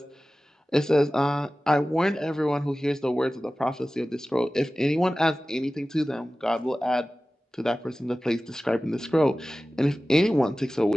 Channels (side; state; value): both; normal; correlation 0.96